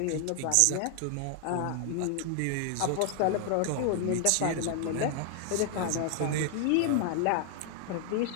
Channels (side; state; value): both; different; correlation 0.00